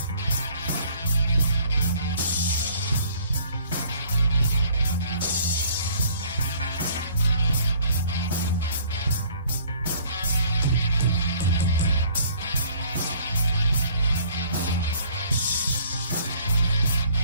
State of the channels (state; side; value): inverted; both; correlation -0.57